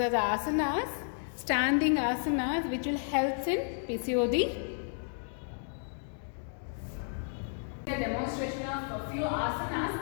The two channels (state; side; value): silent; right; digital silence